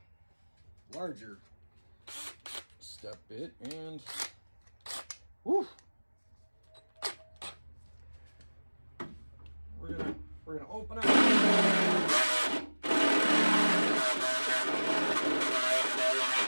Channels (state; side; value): inverted; both; correlation -1.00